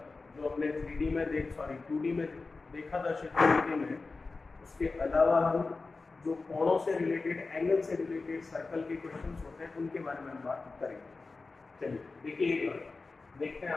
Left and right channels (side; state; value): right; quieter; 3.9 dB